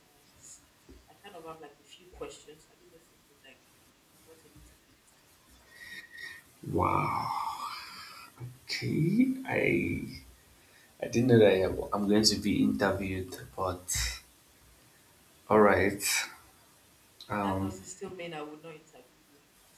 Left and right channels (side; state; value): both; identical; correlation 1.00